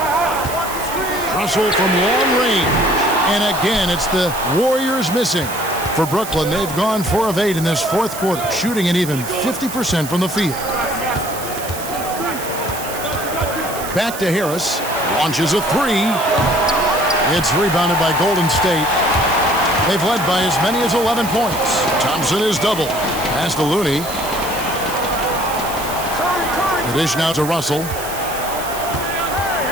Russell from long range. And again, it's the Warriors missing. For Brooklyn, they've gone 4 of 8 in this fourth quarter, shooting an even 50% from the field. Back to Harris. Launches a 3. It's rebounded by Golden State. They've led by as many as 11 points. Thompson is double. Pass to Looney. The dish now to Russell.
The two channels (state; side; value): noise; right; hiss, 10 dB below the sound